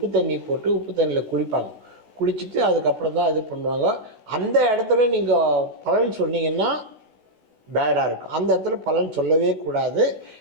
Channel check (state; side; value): late; left; 16 ms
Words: தண்ணி போட்டு உப்பு தண்ணியில் குளிப்பாங்க. குளிச்சுட்டு அதுக்கப்புறம் தான் இது பண்ணுவாங்க. அந்த இடத்துல நீங்கள் பலன் சொன்னீங்கன்னா பேடாக இருக்கும். அந்த இடத்துல பலன் சொல்லவே கூடாது.